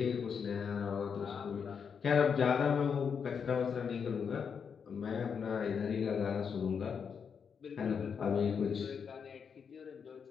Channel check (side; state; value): right; quieter; 6.6 dB